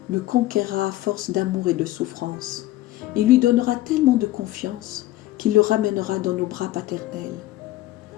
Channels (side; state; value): right; quieter; 16.0 dB